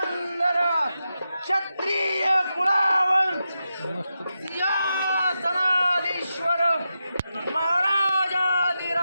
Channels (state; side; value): inverted; both; correlation -0.89